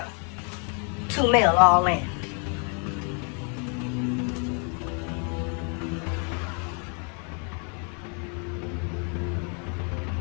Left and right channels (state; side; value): quieter; right; 38.7 dB